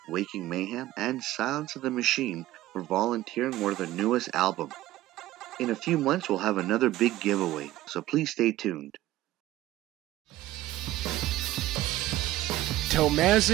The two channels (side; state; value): left; quieter; 15.6 dB